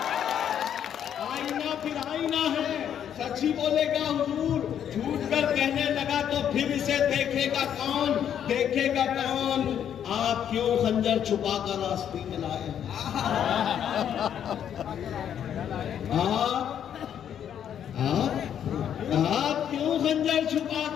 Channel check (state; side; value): quieter; right; 9.3 dB